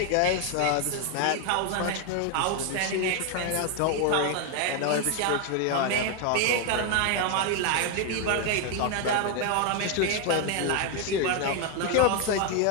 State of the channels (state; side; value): different; both; correlation 0.01